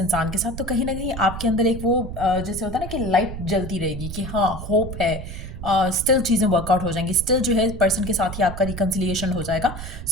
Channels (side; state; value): right; noise; rumble, 9 dB below the sound